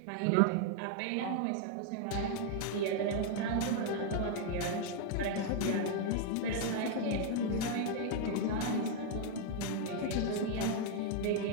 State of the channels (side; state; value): both; different; correlation 0.00